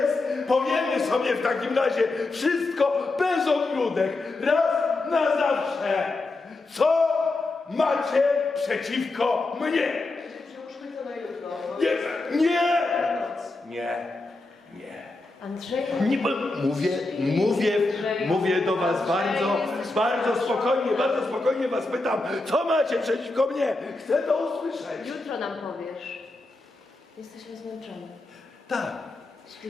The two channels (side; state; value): right; quieter; 3.2 dB